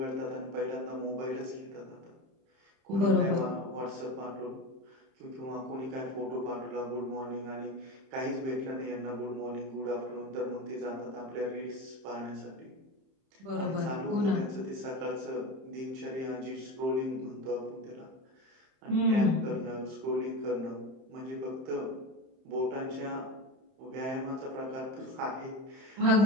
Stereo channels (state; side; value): late; left; 31 ms